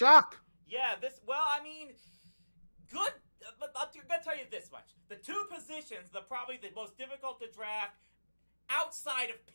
Yeah, good. But I'm gonna tell you this much: the two positions, probably the most difficult to draft outside of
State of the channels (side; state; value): both; inverted; correlation -1.00